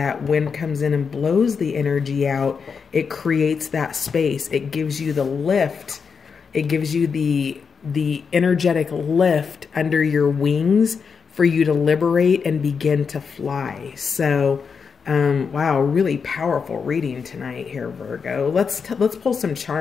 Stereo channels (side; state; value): right; quieter; 5.8 dB